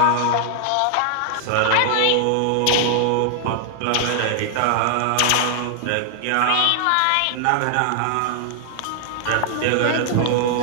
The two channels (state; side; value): different; both; correlation 0.00